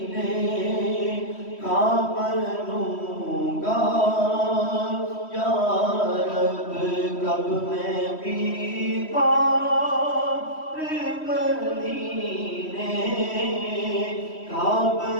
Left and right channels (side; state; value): right; late; 3.1 ms